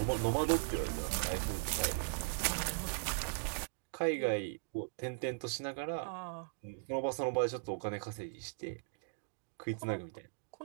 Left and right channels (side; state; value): left; silent; digital silence